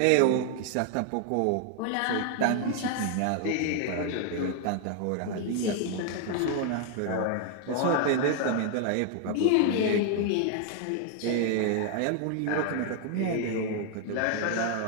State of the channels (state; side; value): different; both; correlation 0.00